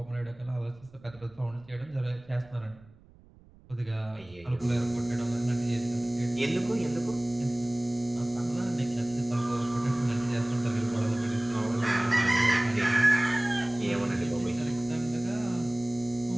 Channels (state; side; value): noise; right; rumble, 25 dB below the sound